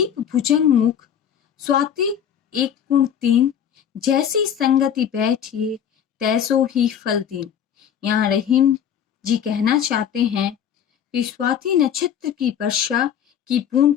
भुजंग मुख, स्वाति एक गुण तीन, जैसी संगति बैठिए तैसो ही फल दीन। यहाँ रहीम जी कहना चाहते हैं कि स्वाति नक्षत्र की वर्षा की बूंद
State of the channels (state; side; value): quieter; right; 8.9 dB